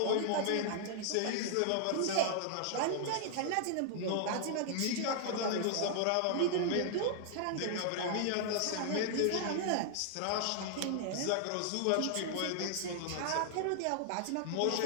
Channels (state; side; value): different; both; correlation -0.01